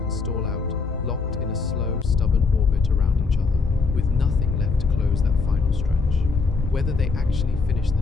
stall out, locked in a slow, stubborn orbit around each other, with nothing left to close that final stretch. Whether they actually finish the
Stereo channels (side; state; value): right; quieter; 4.5 dB